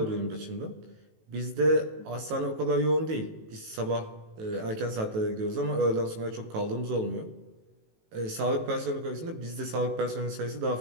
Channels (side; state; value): left; late; 18 ms